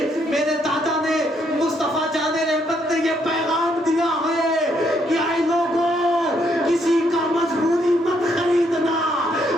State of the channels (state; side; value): normal; both; correlation 0.73